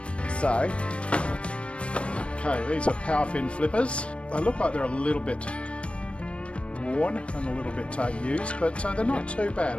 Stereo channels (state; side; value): late; right; 0.060 ms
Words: Okay, these are power fin flippers. They look like they're a little bit worn and a little bit used, but they're not too bad.